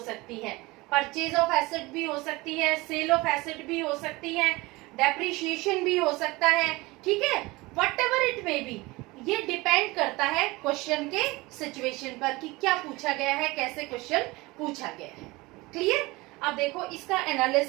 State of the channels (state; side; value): quieter; left; 22.2 dB